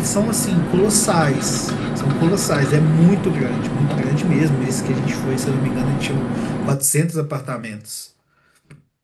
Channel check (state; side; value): identical; both; correlation 1.00